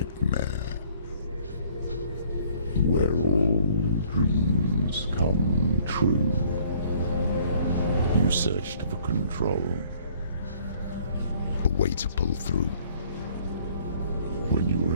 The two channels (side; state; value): both; inverted; correlation -0.58